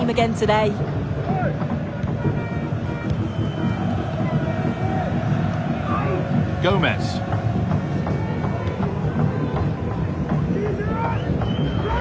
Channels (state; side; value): identical; both; correlation 1.00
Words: again today? Gomez.